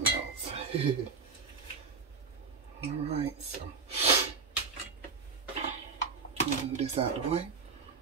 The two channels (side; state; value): left; quieter; 4.8 dB